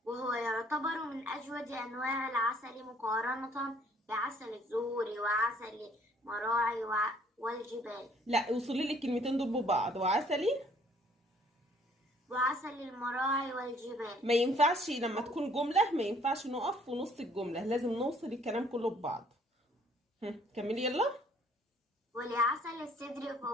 وهو يعتبر من أجود أنواع العسل مقارنة بعسل الزهور وعسل المراعي والجبال. لا، وصلي لي الكلمتين دول ببعض. وعسلي. وعسل المراعي والجبال. ما ينفعش لما تكون جملة، ما ينفعش نقف في نص الجملة، لازم نوصل الكلام كله ببعض. كملي يلا. ولعسل السدر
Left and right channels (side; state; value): both; normal; correlation 0.60